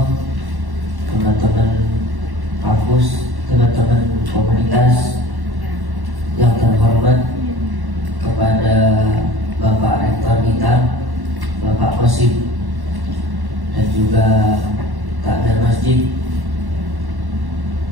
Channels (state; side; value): late; left; 1.1 ms